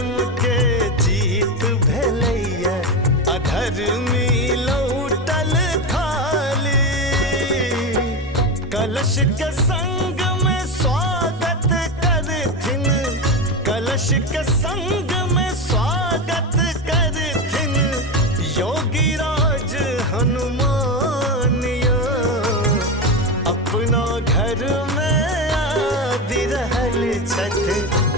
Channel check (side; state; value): both; normal; correlation 0.17